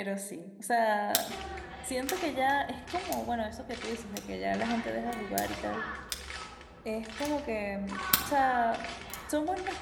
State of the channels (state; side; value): identical; both; correlation 1.00